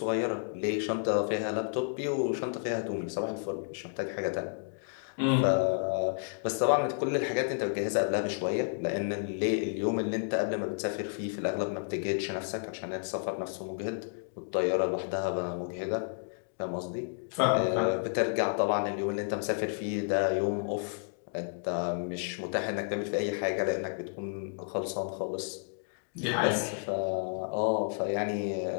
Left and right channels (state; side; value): silent; right; digital silence